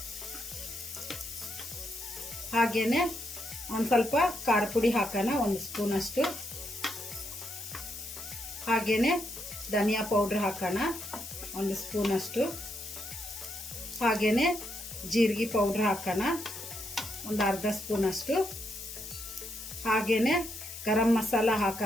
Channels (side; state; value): left; noise; hiss, 10 dB below the sound